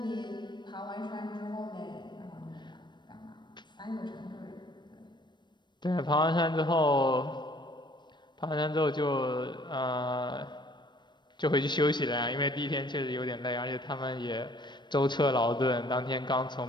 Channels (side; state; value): right; late; 0.22 ms